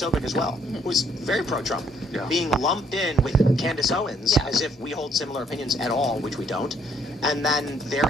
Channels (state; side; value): normal; both; correlation 0.66